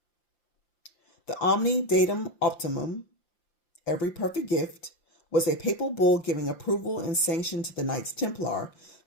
The Omni Datum Optimum, every perfect gift, was a papal bull giving approval and sanction to the Knights Templar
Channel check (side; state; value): right; late; 5.8 ms